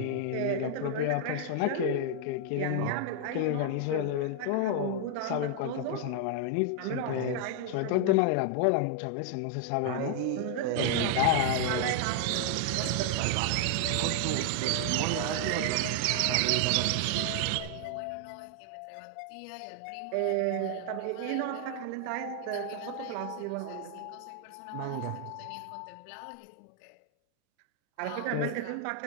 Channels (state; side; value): different; both; correlation 0.00